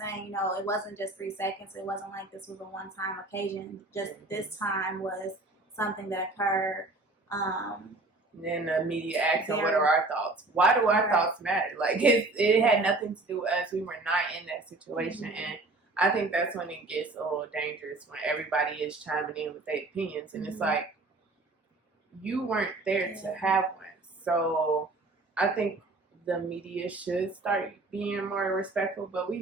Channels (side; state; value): left; quieter; 3.1 dB